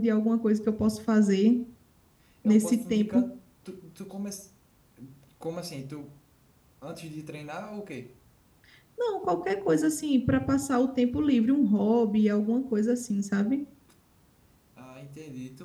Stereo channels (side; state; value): both; identical; correlation 1.00